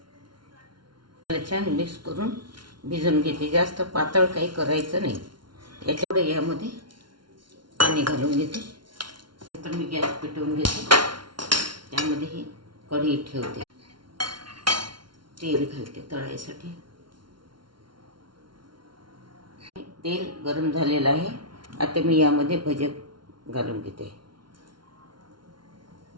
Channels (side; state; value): left; late; 0.72 ms